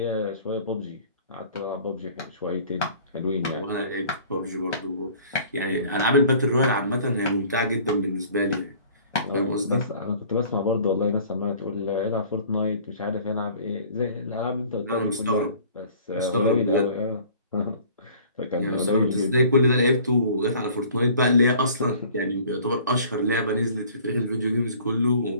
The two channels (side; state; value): both; inverted; correlation -0.50